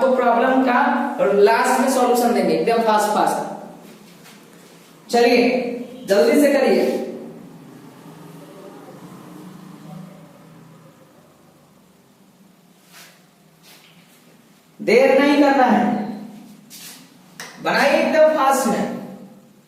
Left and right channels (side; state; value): both; identical; correlation 1.00